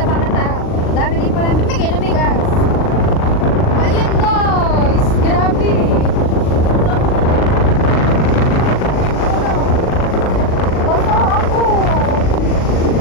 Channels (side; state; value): right; late; 39 ms